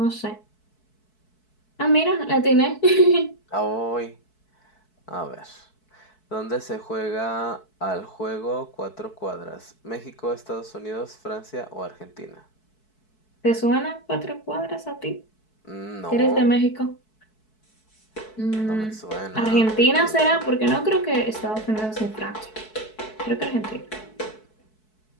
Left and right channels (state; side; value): late; right; 4.6 ms